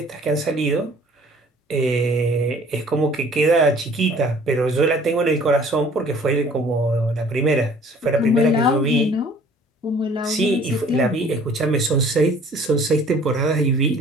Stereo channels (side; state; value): both; normal; correlation 0.53